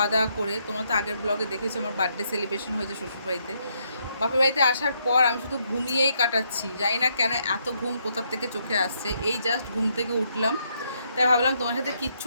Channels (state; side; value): inverted; both; correlation -0.75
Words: দাওয়া করে, তোমরা তো আগের ব্লগে দেখেছো আমার বার্থডে সেলিব্রেশন হয়েছে শ্বশুরবাড়িতে। বাপের বাড়িতে আসার পর আমি শুধু ঘুমিয়েই কাটাচ্ছি, জানি না কেন এত ঘুম কোথার থেকে চোখে আসছে। এই জাস্ট ঘুম থেকে উঠলাম, তাই ভাবলাম তোমার সাথে